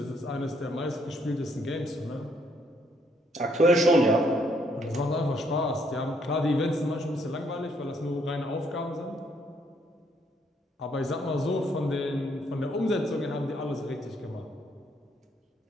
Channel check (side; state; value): both; normal; correlation 0.70